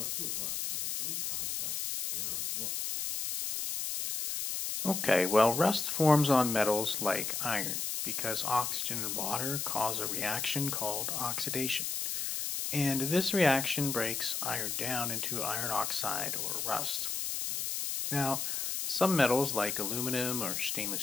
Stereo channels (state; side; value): noise; left; hiss, 2 dB below the sound